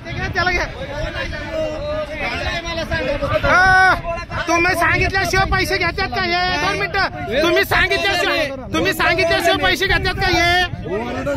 त्याला घ्या तुम्ही सांगितल्याशिवाय पैसे घेतात का हे 2 मिनिटं तुम्ही सांगितल्याशिवाय पैसे घेतात का हे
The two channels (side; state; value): both; identical; correlation 1.00